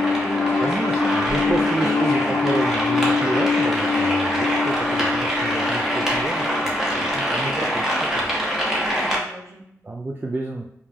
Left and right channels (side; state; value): both; normal; correlation 0.75